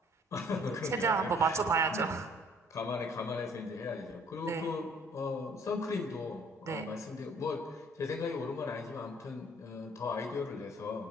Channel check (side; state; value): both; normal; correlation 0.58